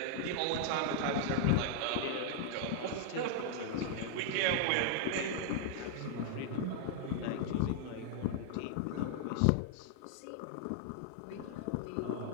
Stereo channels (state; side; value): different; both; correlation -0.01